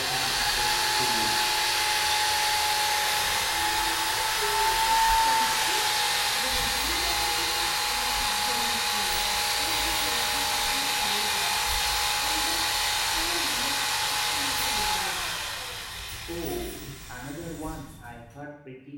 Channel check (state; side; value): identical; both; correlation 1.00